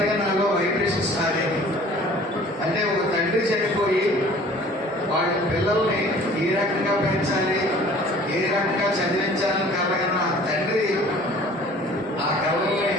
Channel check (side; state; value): both; normal; correlation 0.49